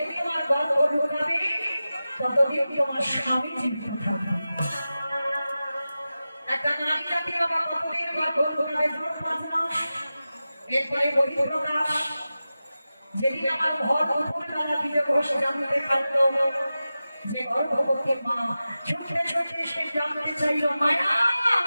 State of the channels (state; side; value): inverted; both; correlation -0.94